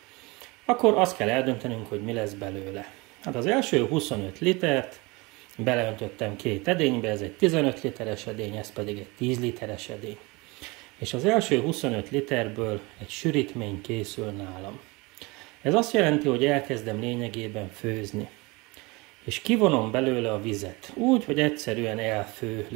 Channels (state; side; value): quieter; left; 25.3 dB